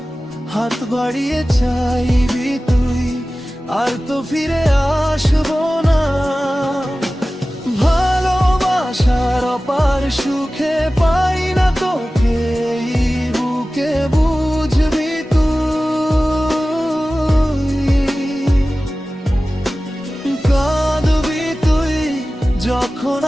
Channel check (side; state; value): both; normal; correlation 0.96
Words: হাত বাড়িয়ে চাইবি তুই, আর তো ফিরে আসবো না। ভালোবাসার অপার সুখে পাই না তোকে এই বুকে, বুঝবি তুই। কাঁদবি তুই, যখন